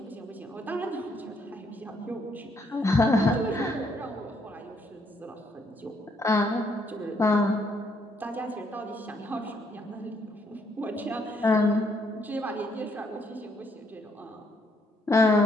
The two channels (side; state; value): both; normal; correlation 0.71